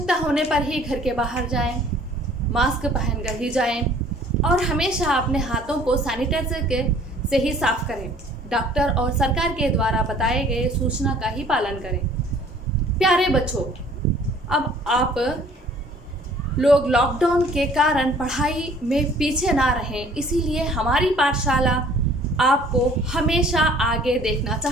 होने पर ही घर के बाहर जाएं, मास्क पहनकर ही जाएं और हमेशा अपने हाथों को सैनिटाइजर से ही साफ करें। डॉक्टर और सरकार के द्वारा बताए गए सूचना का ही पालन करें। प्यारे बच्चों, अब आप लोग लॉकडाउन के कारण पढ़ाई में पीछे ना रहें, इसीलिए हमारी पाठशाला आपको हमेशा आगे देखना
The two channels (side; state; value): both; normal; correlation 0.54